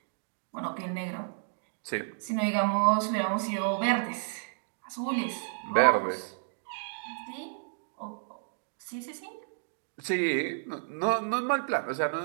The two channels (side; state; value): left; silent; digital silence